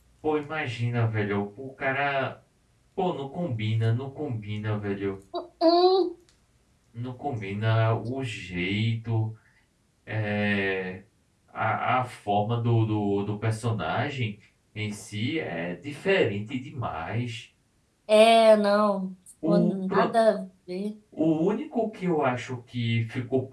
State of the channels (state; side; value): identical; both; correlation 1.00